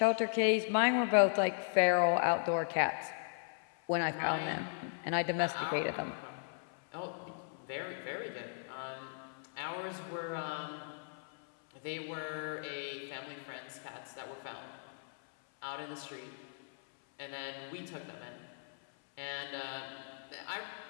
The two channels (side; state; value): right; silent; 53 dB below the other